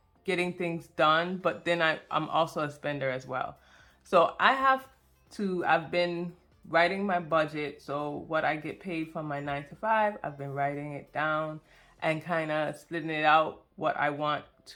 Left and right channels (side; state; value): both; identical; correlation 1.00